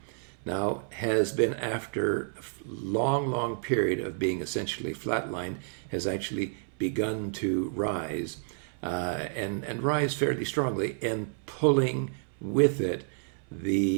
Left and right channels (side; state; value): left; silent; 58 dB below the other